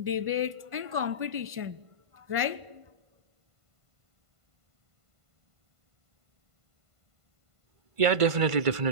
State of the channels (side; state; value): left; late; 1.5 ms